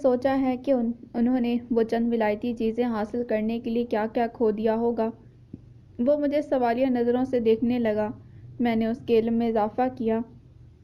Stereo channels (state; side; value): identical; both; correlation 1.00